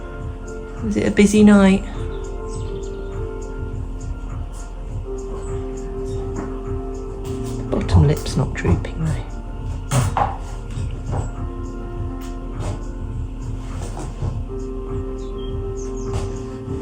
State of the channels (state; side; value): identical; both; correlation 1.00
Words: Was it a busy night? The bottom lip's not drooping though.